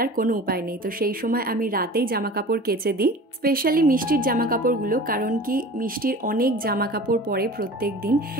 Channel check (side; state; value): both; normal; correlation 0.39